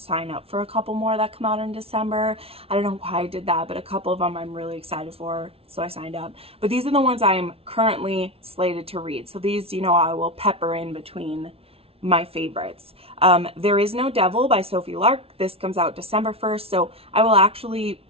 sign up for a couple more that come out in December. I don't know why I did that, but a couple of them I'm really excited for, so I signed up. But these are the ones I am currently slated to read. So these, I will pepper in between my favorites. There Is No Devil by Sophie Lark. This comes out December 1st, so I will actually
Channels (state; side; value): late; left; 0.28 ms